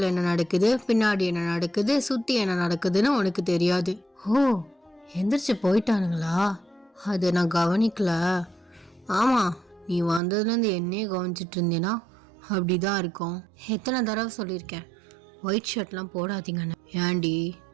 என்ன நடக்குது, பின்னாடி என்ன நடக்குது, சுற்றி என்ன நடக்குதுன்னு உனக்கு தெரியாது. எந்திரிச்சு போயிட்டானுங்களா? அது நான் கவனிக்கல. ஆமாம், நீ வந்ததுலேருந்து என்னையே கவனிச்சிட்டு இருந்தேன்னா அப்படி தான் இருக்கும். எத்தனை தடவை சொல்லியிருக்கேன் ஒயிட் ஷர்ட்லாம் போடாதீங்கன்னு. ஏண்டி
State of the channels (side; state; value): left; drops out; at 10.2 s